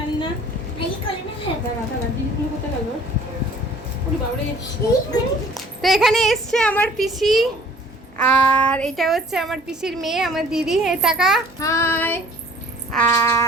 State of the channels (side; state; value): both; normal; correlation 0.53